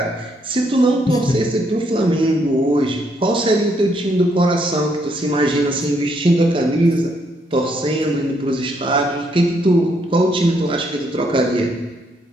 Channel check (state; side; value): normal; both; correlation 0.73